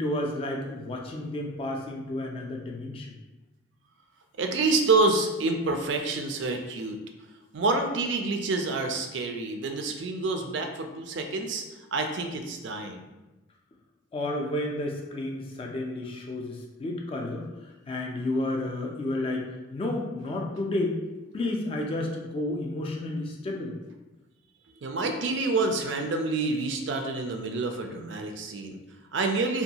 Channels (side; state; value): both; normal; correlation 0.28